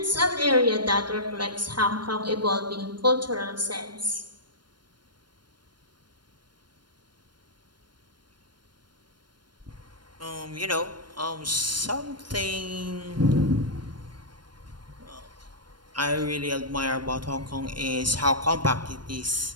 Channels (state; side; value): late; left; 0.71 ms